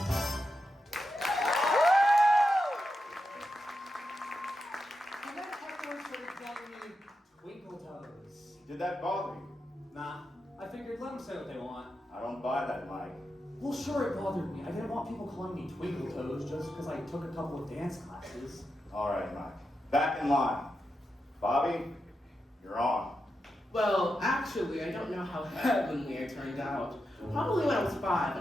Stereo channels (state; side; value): normal; both; correlation 0.88